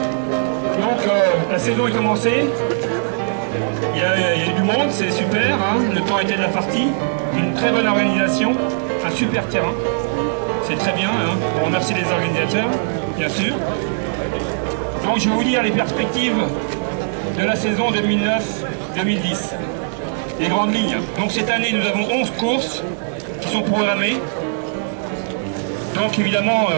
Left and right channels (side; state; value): left; silent; digital silence